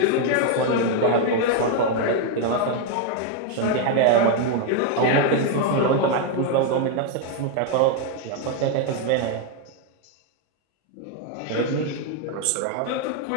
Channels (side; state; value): both; different; correlation 0.01